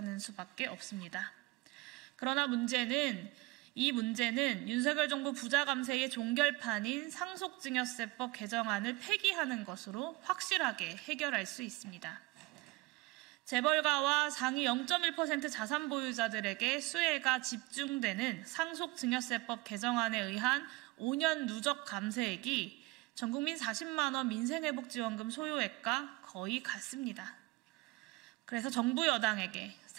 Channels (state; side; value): quieter; left; 21.6 dB